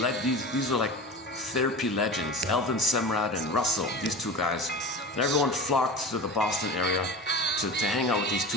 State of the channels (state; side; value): normal; both; correlation 0.32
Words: these are like therapy legends. Elvin Semrad and Russell, these two guys. And everyone flocked to the Boston area to hang out with these